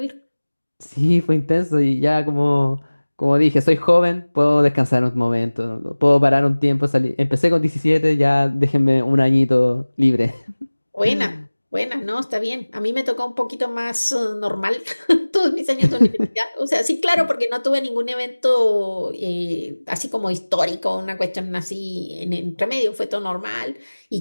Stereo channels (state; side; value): inverted; both; correlation -1.00